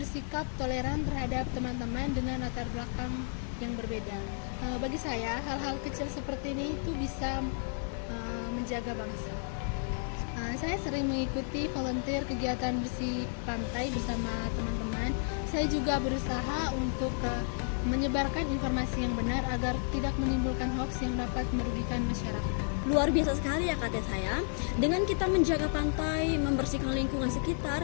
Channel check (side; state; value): right; silent; 56 dB below the other